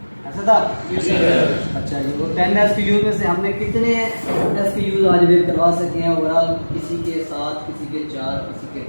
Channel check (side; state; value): both; inverted; correlation -1.00